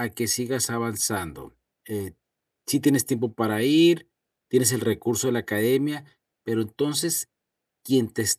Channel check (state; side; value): identical; both; correlation 1.00